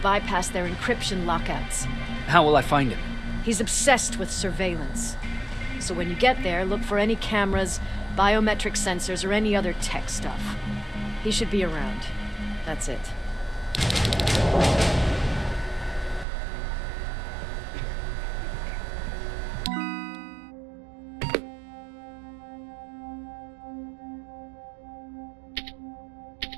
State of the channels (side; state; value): left; drops out; at 16.2 s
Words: their encryption lockouts. How will I find him? He's obsessed with surveillance. So when you get there, look for any cameras, biometric sensors, or any other tech stuff. He should be around. That's it.